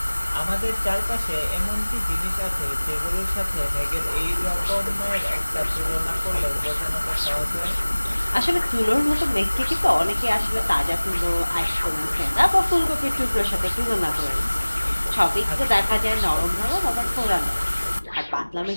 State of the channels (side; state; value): both; inverted; correlation -1.00